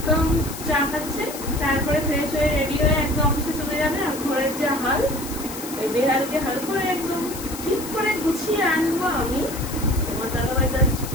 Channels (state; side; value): noise; left; hiss, 11 dB below the sound